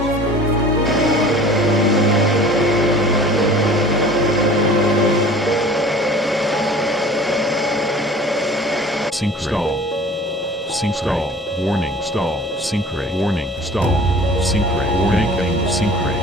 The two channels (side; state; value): both; normal; correlation 0.45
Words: Sync stall. Sync stall. Warning stall. Sync rate. Warning stall. Sync rate. Banking. Sync